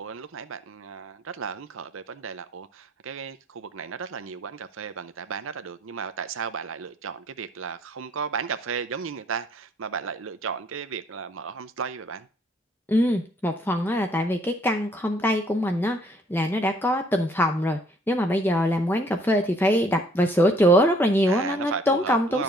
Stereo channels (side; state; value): both; normal; correlation 0.62